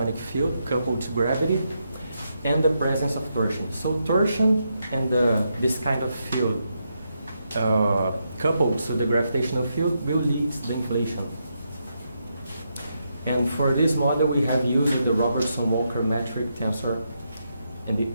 field coupled to gravity and the presence of torsion. So torsion and this kind of field coupled to the gravitational field will lead to the inflation. And for this model, we have used the Robertson-Walker metric tensor, and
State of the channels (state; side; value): inverted; both; correlation -0.82